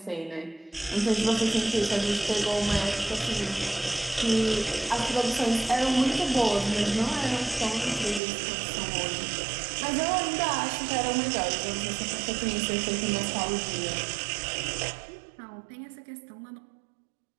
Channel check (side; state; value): left; drops out; at 8.2 s